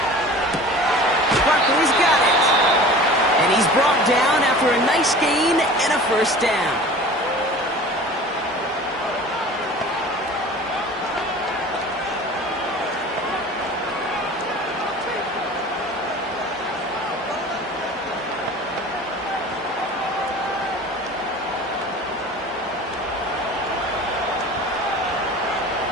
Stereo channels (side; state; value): both; normal; correlation 0.40